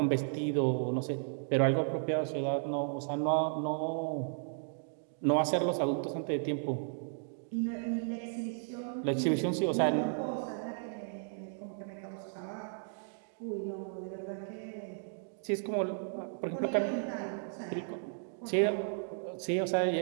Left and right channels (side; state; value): left; silent; digital silence